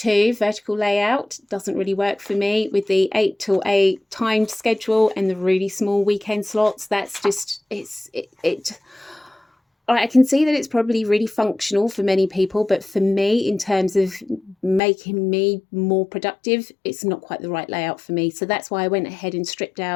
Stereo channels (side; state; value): right; drops out; at 14.8 s